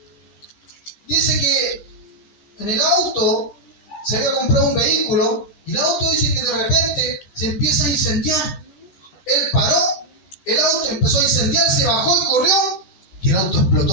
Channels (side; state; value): right; late; 13 ms